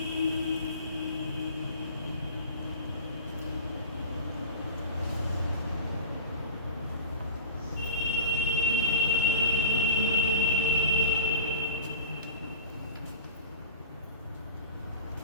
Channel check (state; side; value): inverted; both; correlation -0.35